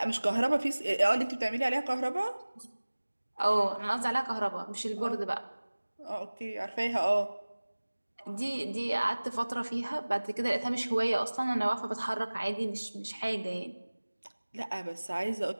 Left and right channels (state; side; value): inverted; both; correlation -1.00